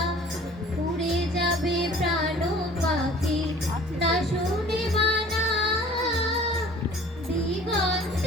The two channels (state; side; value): normal; both; correlation 0.48